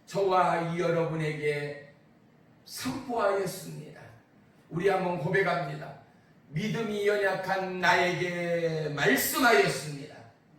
저와 여러분에게 선포하였습니다. 우리 한번 고백합니다. 믿음이 연약한 나에게 말씀하였습니다.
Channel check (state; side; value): identical; both; correlation 1.00